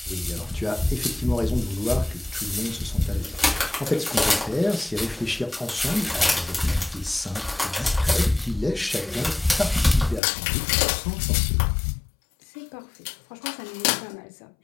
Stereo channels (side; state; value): right; drops out; at 10.2 s